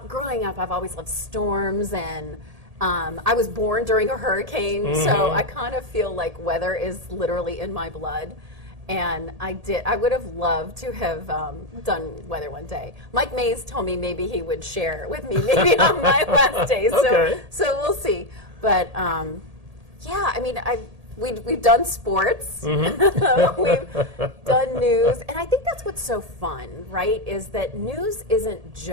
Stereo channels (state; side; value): late; left; 1.8 ms